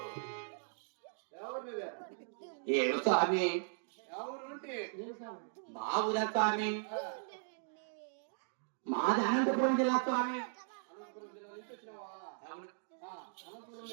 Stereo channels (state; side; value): silent; left; digital silence